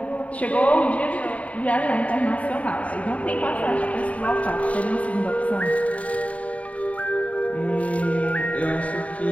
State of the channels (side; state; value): right; late; 0.067 ms